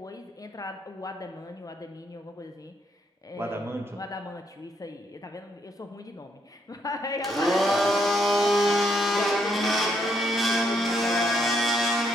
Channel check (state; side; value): normal; both; correlation 0.74